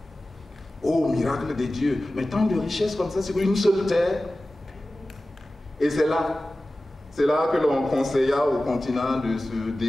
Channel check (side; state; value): both; normal; correlation 0.96